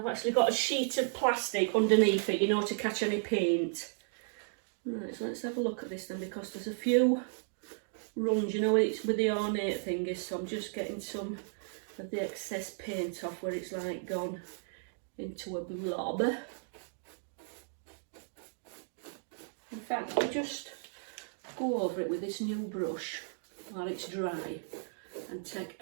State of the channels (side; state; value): left; silent; digital silence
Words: actually got a sheet of plastic underneath it, you know, to catch any paint. Right, so let's have a look at this then, because there's a few runs, you know, it's with the ornate thingies, so I'm just getting some of the excess paint off where it's like gone into a blob. In fact, I'll just go over it with this new brush while it's dry. and take